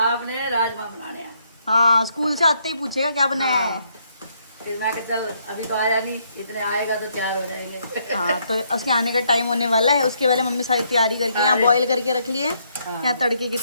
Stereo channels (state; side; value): inverted; both; correlation -0.73